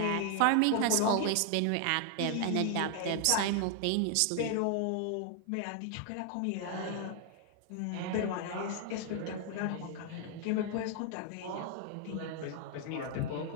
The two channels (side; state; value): both; different; correlation 0.00